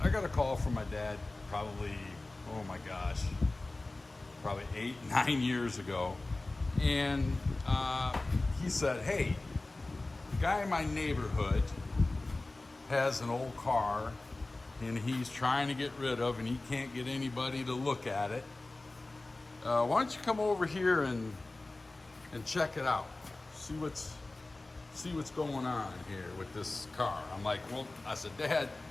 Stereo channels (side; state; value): right; quieter; 3.0 dB